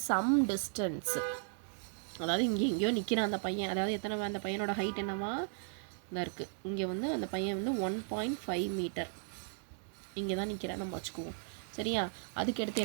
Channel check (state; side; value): silent; left; digital silence